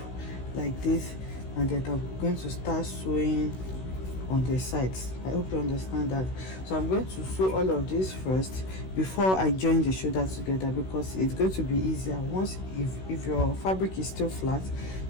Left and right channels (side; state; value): right; late; 16 ms